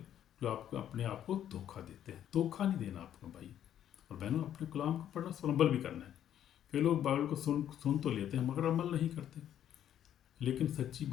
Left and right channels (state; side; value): quieter; right; 10.6 dB